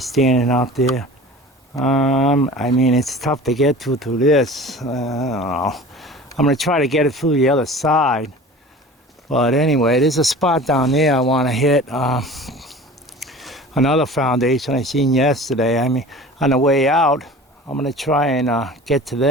out there. I mean, it's tough to get through this. I don't know. I'm gonna try to get it through the other side. But anyway, there's a spot down there I want to hit. Another foundation I seen yesterday. I mean, on the way out, I'm gonna try and get to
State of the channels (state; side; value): normal; both; correlation 0.40